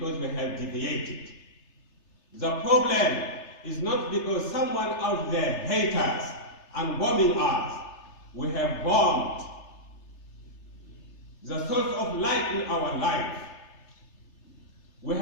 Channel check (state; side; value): late; right; 3.3 ms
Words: we have deviated. The problem is not because someone out there hates us and bombing us. We have bombed the source of light in our life. We